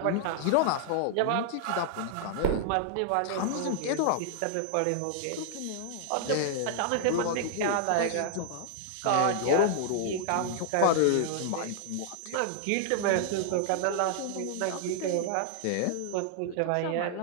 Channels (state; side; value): different; both; correlation -0.01